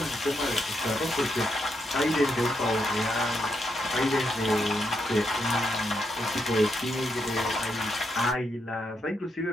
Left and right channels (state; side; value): normal; both; correlation 0.80